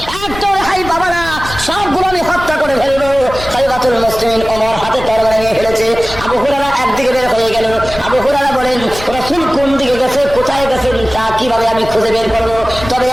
একটা রেহাই পাবো না, সবগুলো আমি হত্যা করে ফেলবো। খলিফাতুল মুসলিমিন ওমর হাতে তরবারি নিয়ে ফেলেছে। আবু হুরায়রা একদিকে বের হয়ে গেল। আবু হুরায়রা বলেন, রাসূল কোন দিকে গেছে, কোথায় গেছেন, তা কিভাবে আমি খুঁজে বের করবো? তবে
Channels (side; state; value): left; noise; rumble, 12 dB below the sound